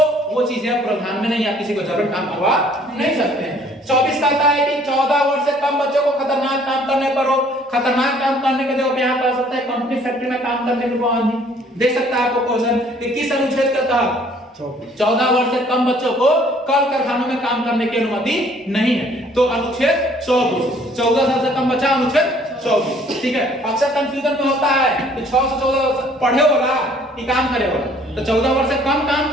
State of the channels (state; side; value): normal; both; correlation 0.59